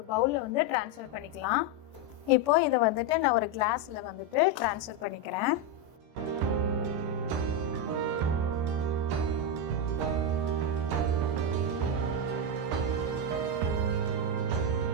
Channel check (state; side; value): late; left; 14 ms